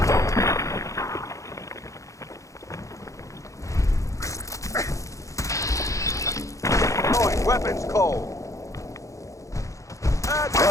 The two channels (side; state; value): right; late; 0.15 ms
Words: Going weapons cold!